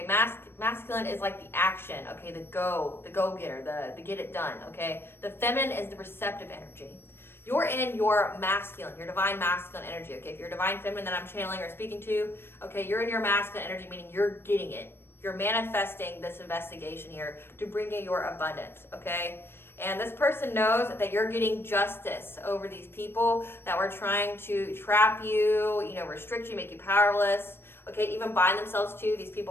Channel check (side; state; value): right; late; 0.11 ms